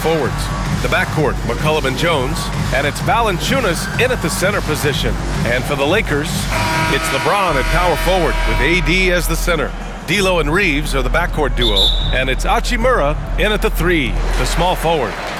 The backcourt, McCollum and Jones, and it's Valanciunas in at the center position. And for the Lakers, it's LeBron at power forward with AD as the center. D'Lo and Reeves are the backcourt duo, and it's Hachimura in at the 3, the small forward.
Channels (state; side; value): identical; both; correlation 1.00